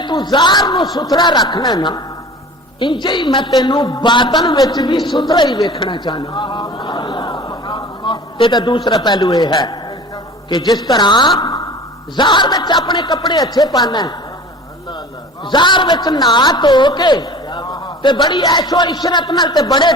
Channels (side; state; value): both; normal; correlation 0.41